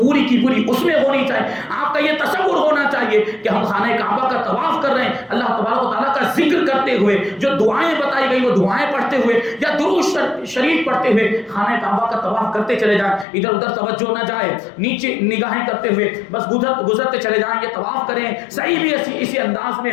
کی پوری اس میں ہونی چاہیے، آپ کا یہ تصور ہونا چاہیے کہ ہم خانہ کعبہ کا طواف کر رہے ہیں، اللہ تبارک و تعالیٰ کا ذکر کرتے ہوئے، جو دعائیں بتائی گئی وہ دعائیں پڑھتے ہوئے یا درود شریف پڑھتے ہوئے خانہ کعبہ کا طواف کرتے چلے جائیں، ادھر ادھر توجہ نہ جائے، نیچے نگاہیں کرتے ہوئے بس گزرتے چلے جائیں، یہ طواف کریں، صحیح بھی اسی انداز میں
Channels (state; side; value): drops out; right; at 13.2 s